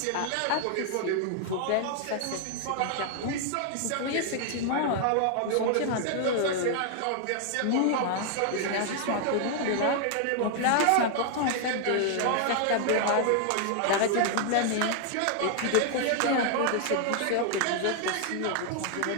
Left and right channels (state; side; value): different; both; correlation 0.00